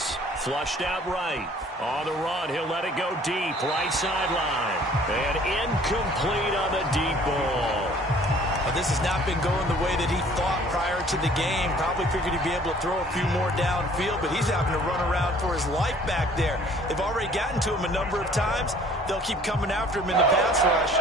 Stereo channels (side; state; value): both; normal; correlation 0.54